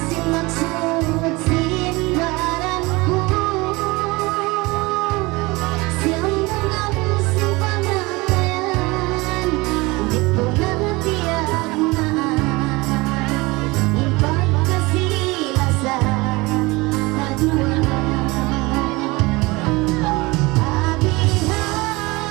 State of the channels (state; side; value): quieter; left; 23.4 dB